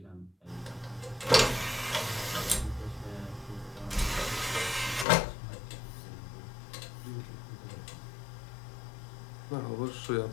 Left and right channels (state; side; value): drops out; right; at 5.1 s